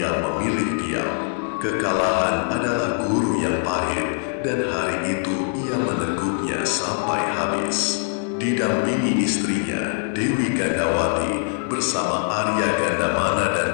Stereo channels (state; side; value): silent; right; digital silence